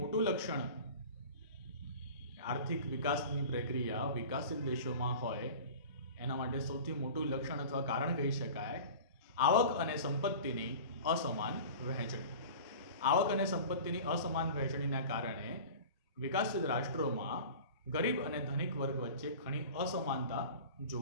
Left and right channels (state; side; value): inverted; both; correlation -0.38